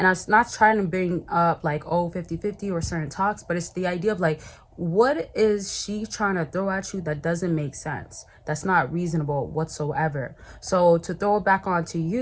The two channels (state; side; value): identical; both; correlation 1.00